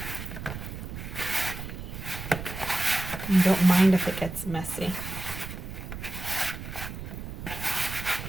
And don't mind if it gets messy.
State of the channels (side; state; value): right; noise; rumble, 9 dB below the sound